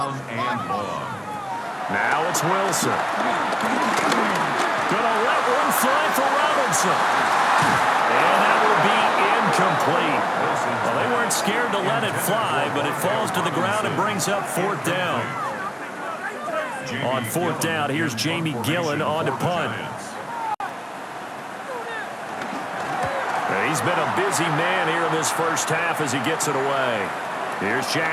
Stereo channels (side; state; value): both; identical; correlation 1.00